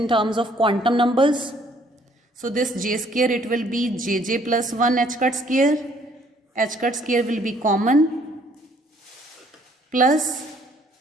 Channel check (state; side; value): normal; both; correlation 0.62